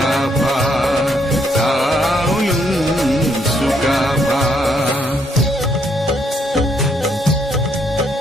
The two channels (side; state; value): both; normal; correlation 0.73